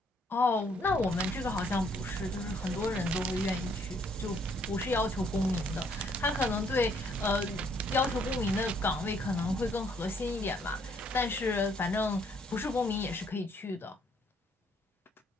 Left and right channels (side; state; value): both; normal; correlation 0.67